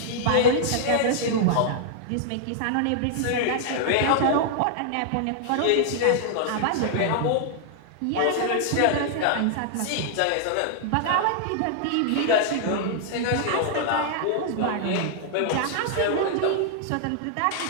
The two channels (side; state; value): both; different; correlation -0.01